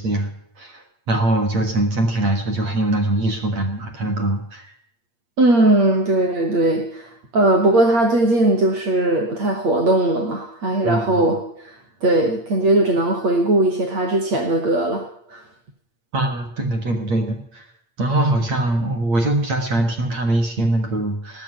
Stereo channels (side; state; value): left; late; 8.6 ms